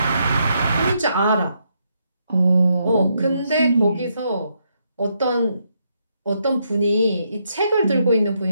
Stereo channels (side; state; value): both; inverted; correlation -0.78